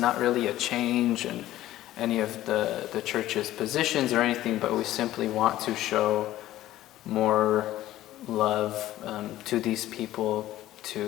really a change in any of the church's positions or anything, but we simply want to show more love to these people.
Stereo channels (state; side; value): quieter; right; 14.4 dB